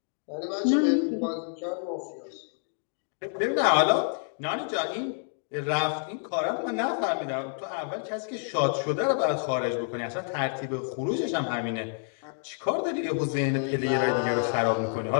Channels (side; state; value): right; silent; 59 dB below the other